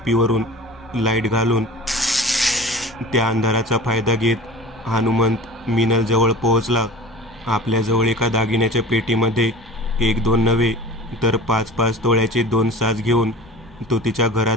लाईट घालून त्या अंधाराचा फायदा घेत हनुमंत मीनलजवळ पोहोचला. आपल्याजवळ एका दागिन्याच्या पेटीमध्ये 1-2 नव्हे तर 5-5 तोळ्याचे 2 साज घेऊन तो तिच्या घरात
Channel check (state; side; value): noise; left; rumble, 26 dB below the sound